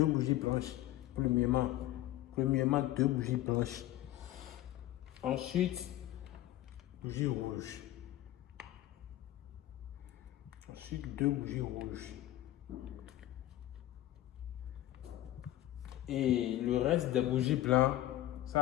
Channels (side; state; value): right; quieter; 14.5 dB